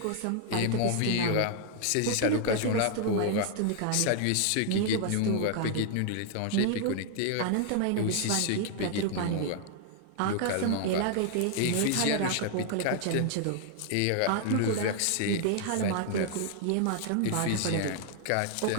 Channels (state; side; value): different; both; correlation 0.00